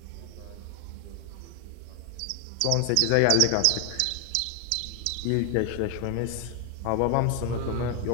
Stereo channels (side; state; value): both; different; correlation 0.00